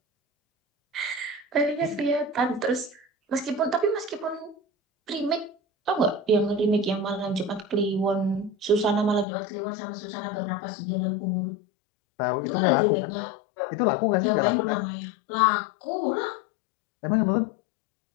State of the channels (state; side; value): drops out; right; at 9.2 s